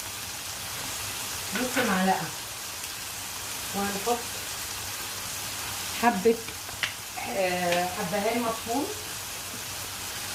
نص معلقه، وهنحط حبه حبهان مطحون،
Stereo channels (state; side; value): identical; both; correlation 1.00